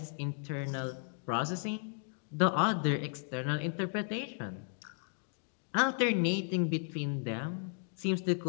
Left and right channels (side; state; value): right; silent; 55 dB below the other